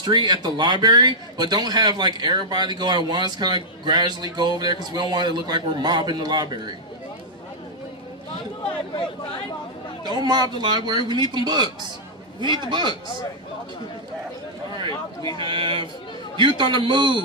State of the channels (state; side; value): normal; both; correlation -0.07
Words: at the library, but don't have like everybody go at once, kind of gradually go over there because we don't want it to look like we're mobbing the library. Don't mob the library, we need them books. We need the books. Alright, we have Youth on the